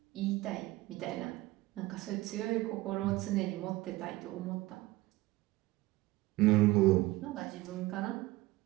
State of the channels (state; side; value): quieter; left; 19.1 dB